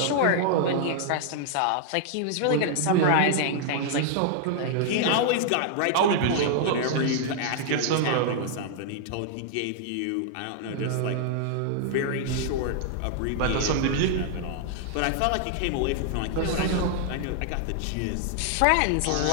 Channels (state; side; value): different; both; correlation -0.01